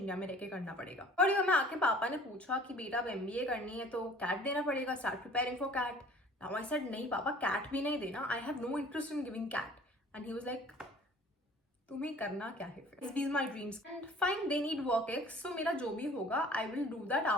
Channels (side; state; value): both; normal; correlation 0.50